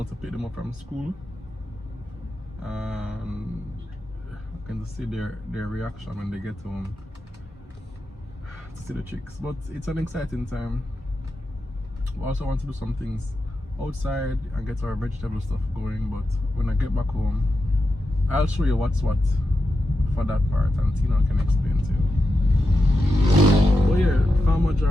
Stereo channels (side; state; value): both; normal; correlation 0.89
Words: to pick them up from school. And I can see their reaction when they get home to see the chicks. But it's an exciting time. We also want to do some things outside and get our vegetable stuff going, but when I get back home, I'll show you what's what for that part, and Tina can explain to you. But yeah, Farmer